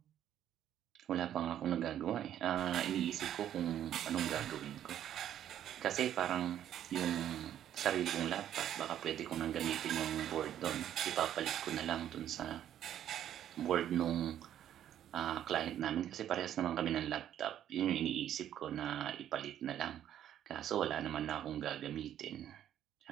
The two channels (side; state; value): left; quieter; 10.9 dB